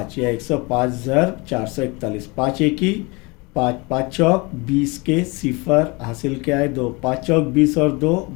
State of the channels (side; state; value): right; quieter; 26.9 dB